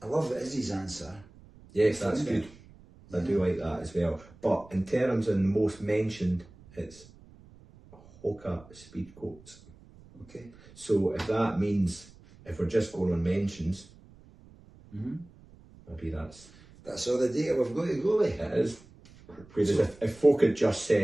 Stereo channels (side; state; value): right; noise; rumble, 24 dB below the sound